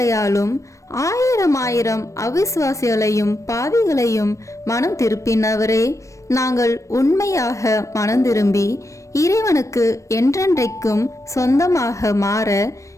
ஆயிரம் ஆயிரம் அவிசுவாசிகளையும் பாவிகளையும் மனம் திருப்பினவரே, நாங்கள் உண்மையாக மனம் திரும்பி இறைவனுக்கு என்றென்றைக்கும் சொந்தமாக மாற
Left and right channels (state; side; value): late; right; 0.15 ms